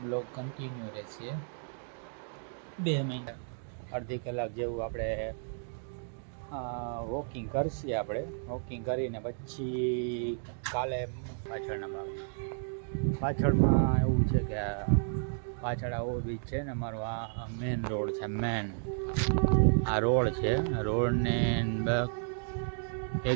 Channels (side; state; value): left; silent; digital silence